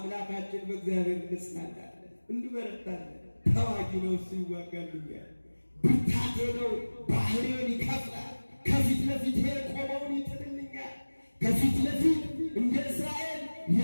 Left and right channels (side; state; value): both; inverted; correlation -1.00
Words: በእግዚአብሔር እንጽናናለን፣ እንበረታለን። ተዋጊ ነው እሱ ይዋጋልኛል፣ ብርታቴ ነው ባህሬን ይከፍላል፣ ከፊት ለፊት የቆመውን ይጥልልኛል። ከፊት ለፊት እንደ እስራኤል